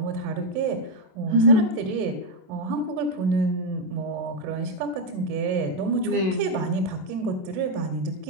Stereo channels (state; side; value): late; left; 27 ms